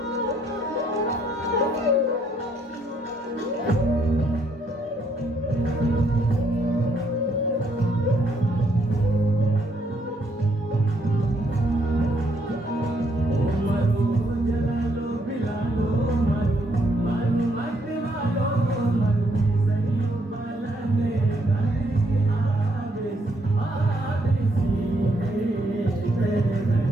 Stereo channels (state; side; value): normal; both; correlation 0.71